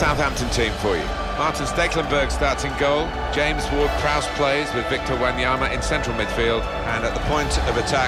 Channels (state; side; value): identical; both; correlation 1.00